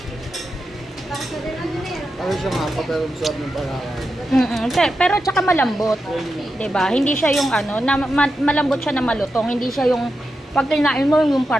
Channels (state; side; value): normal; both; correlation 0.88